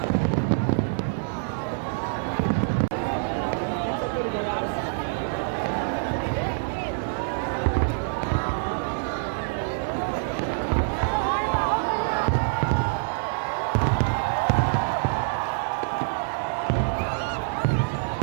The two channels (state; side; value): silent; left; 61 dB below the other